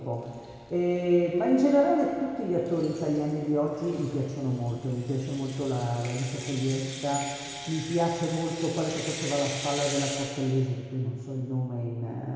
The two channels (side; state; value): both; identical; correlation 1.00